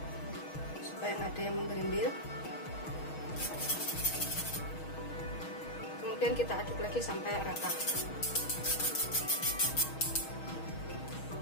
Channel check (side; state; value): right; late; 6.3 ms